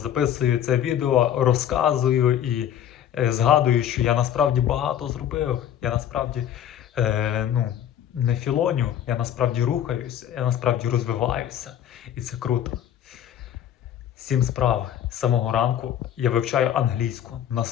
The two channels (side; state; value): right; quieter; 10.2 dB